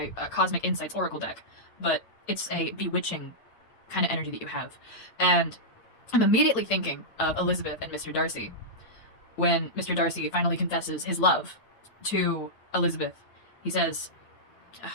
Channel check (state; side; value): late; right; 8.9 ms